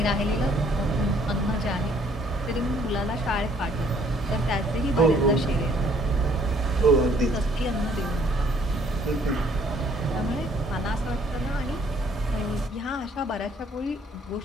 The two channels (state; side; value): normal; both; correlation 0.62